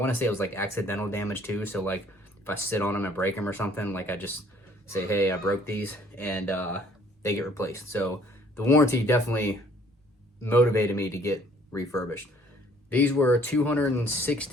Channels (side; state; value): both; normal; correlation 0.59